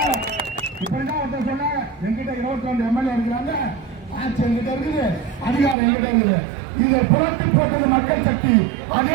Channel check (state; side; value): drops out; left; at 5.8 s